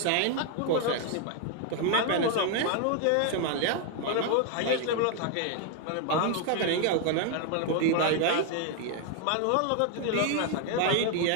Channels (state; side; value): different; both; correlation 0.00